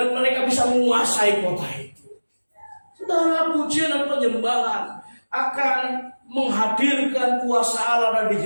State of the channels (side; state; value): both; inverted; correlation -1.00